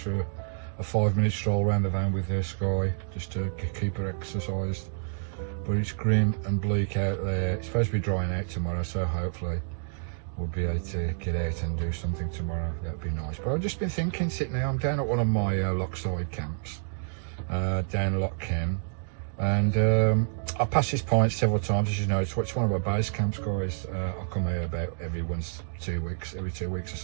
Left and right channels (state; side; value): silent; left; digital silence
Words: a 5-minute stroll around the van with Skye, just to keep her exercised. But it's grim and bleak out there. It's supposed to be drying out tomorrow, so hopefully we'll be able to get out and do something tomorrow. That'd be nice. But I've just been thinking, sitting there, I'm down at one of my lockside camps, down Loch Ken. And I passed this point several times, as you know. It's one of my base camps, guys. I come here about every 2 weeks or